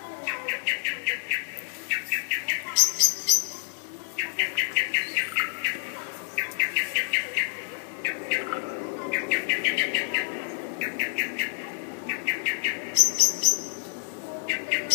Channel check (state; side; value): silent; right; digital silence